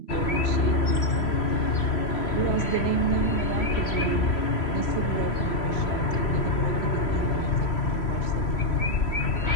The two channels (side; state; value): right; late; 3.0 ms